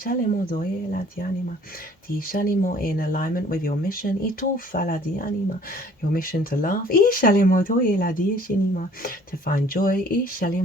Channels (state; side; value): normal; both; correlation 0.54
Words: In alignment with your mission. Your mission to laugh. To find joy.